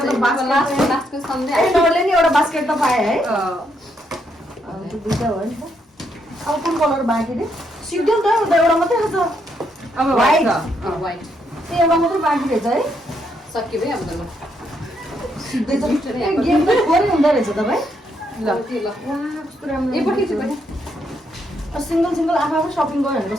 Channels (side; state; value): both; normal; correlation 0.76